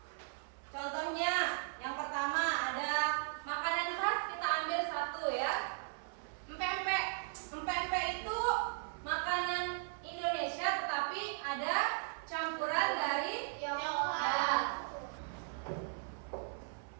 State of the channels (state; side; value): silent; left; 53 dB below the other